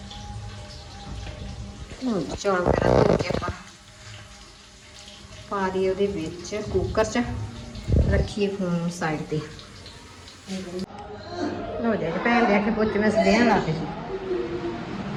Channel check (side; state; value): both; identical; correlation 1.00